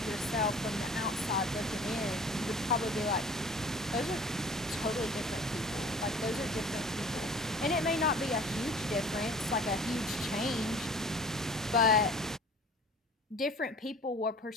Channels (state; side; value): normal; both; correlation 0.46